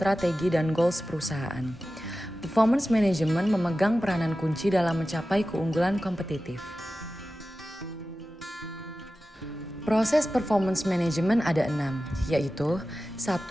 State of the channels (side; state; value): both; normal; correlation 0.94